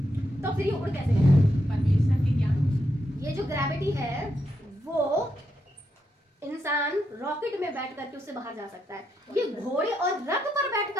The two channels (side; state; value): both; normal; correlation 0.82